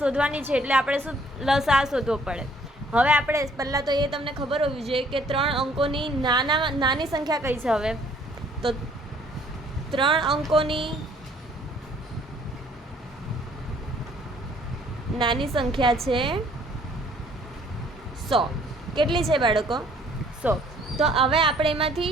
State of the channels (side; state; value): both; normal; correlation 0.60